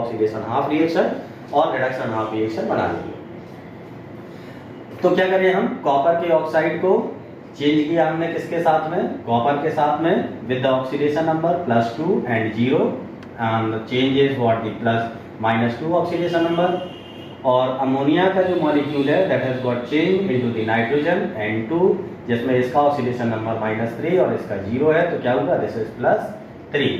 हाफ रिएक्शन और रिडक्शन हाफ रिएक्शन बना लेंगे। तो क्या करें, हम कॉपर के ऑक्साइड को चेंज किया हमने किसके साथ में, कॉपर के साथ में, with the oxidation number +2 and 0, and change is what the -2 oxidation number. और अमोनिया का जो मॉलिक्यूल है that has got change into the nitrogen N2, जिसमें इसका ऑक्सीडेशन नंबर -3 और इसका 0 है, तो क्या होगा, दिस इज +3।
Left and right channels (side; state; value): both; identical; correlation 1.00